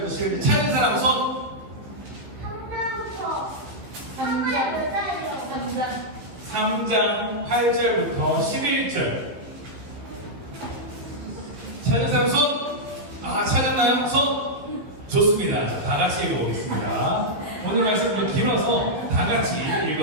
11절. 찾은 사람 손. 3장 8절부터 11절. 찾은 사람 손. 아, 찾았나요? 손. 좋습니다. 자, 다 같이 읽어보겠습니다. 오늘 말씀은 길어서 다 같이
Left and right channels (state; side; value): late; left; 15 ms